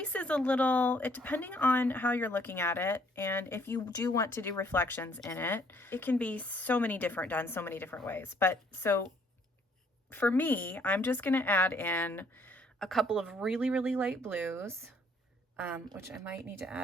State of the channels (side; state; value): both; normal; correlation 0.64